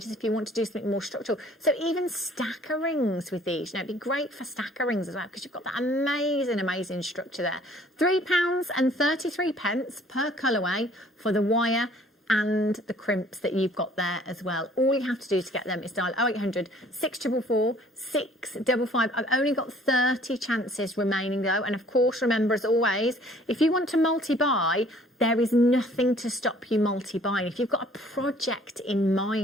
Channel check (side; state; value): both; normal; correlation 0.56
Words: if you want to do something more structural. So even stacker rings with these, you know, it'd be great for stacker rings as well because you've got that amazing, amazing structure there. £3.33 per colourway for the wire and the crimps that you've got there as well. All you have to do to get them is dial 0800 644 655. I've only got 30 chances remaining though, and of course remember as always, if you want to multi-buy, there is nothing to stop you multi-buying. If you've got a project in